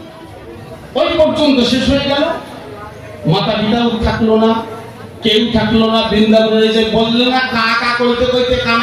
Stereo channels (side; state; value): both; identical; correlation 1.00